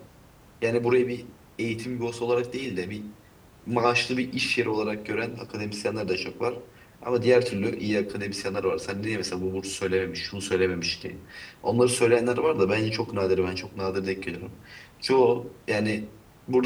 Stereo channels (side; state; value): both; identical; correlation 1.00